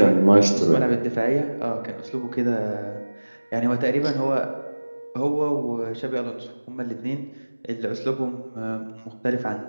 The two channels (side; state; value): both; inverted; correlation -1.00